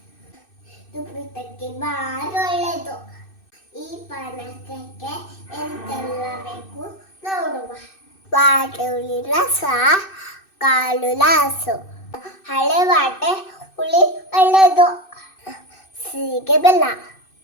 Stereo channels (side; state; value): right; late; 2.6 ms